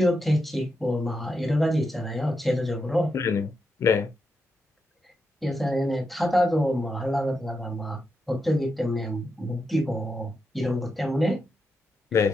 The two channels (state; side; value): normal; both; correlation 0.85